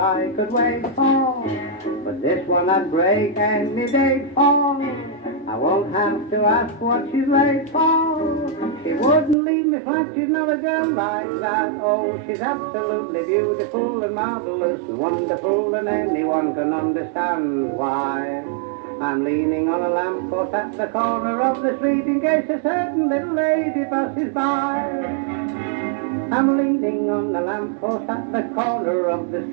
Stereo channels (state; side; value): drops out; left; at 9.3 s